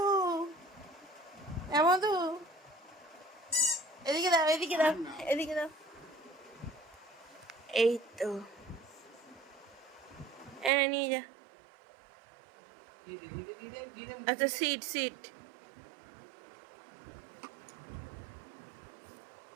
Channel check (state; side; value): drops out; left; at 10.7 s